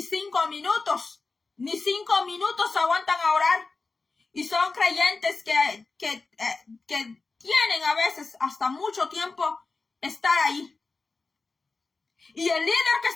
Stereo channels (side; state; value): right; quieter; 3.9 dB